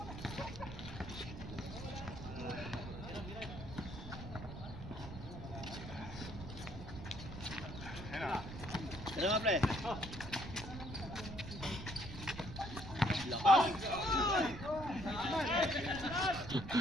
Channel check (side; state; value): right; noise; rumble, 10 dB below the sound